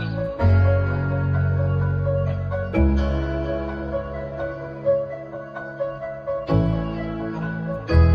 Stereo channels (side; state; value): both; identical; correlation 1.00